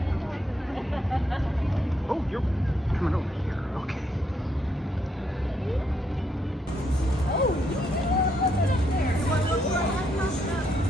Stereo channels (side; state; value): both; normal; correlation 0.75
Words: Oh, you're coming over here. Okay.